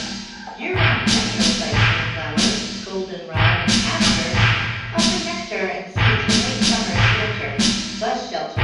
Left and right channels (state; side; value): identical; both; correlation 1.00